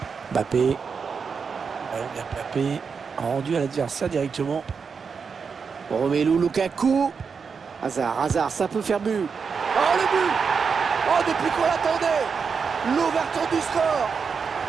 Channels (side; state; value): left; quieter; 5.7 dB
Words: Mbappé. Ballon bien Mbappé. Rendu à l'adversaire directement. Romelu Lukaku. Hazard, ça peut faire but. Oh, le but! Oh, depuis qu'on l'attendait! L'ouverture du score!